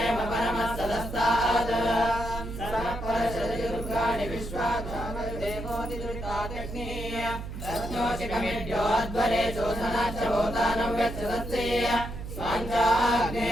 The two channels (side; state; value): right; noise; hum, 8 dB below the sound